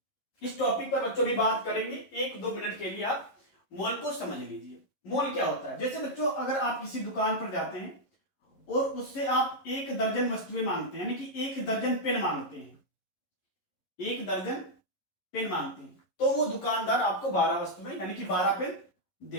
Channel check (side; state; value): right; late; 11 ms